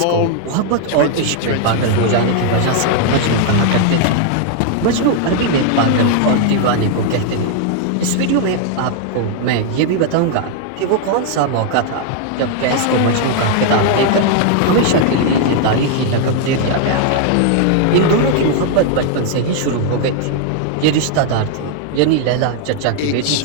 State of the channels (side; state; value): both; different; correlation 0.00